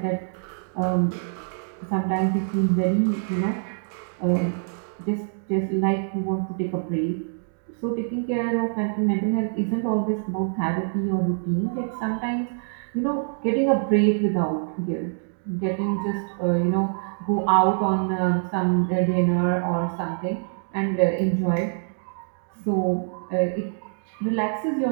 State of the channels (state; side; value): silent; left; digital silence